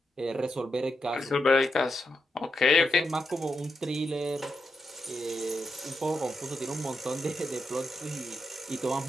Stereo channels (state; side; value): normal; both; correlation 0.85